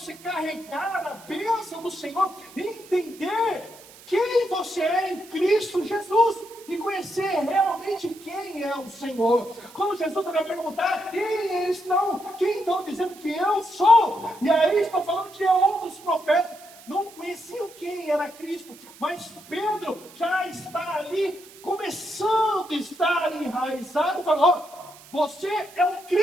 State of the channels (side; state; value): right; noise; hiss, 21 dB below the sound